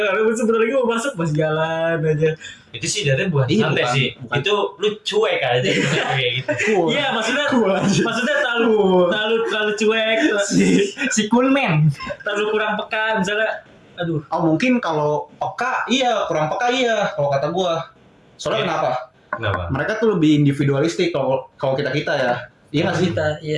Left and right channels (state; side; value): identical; both; correlation 1.00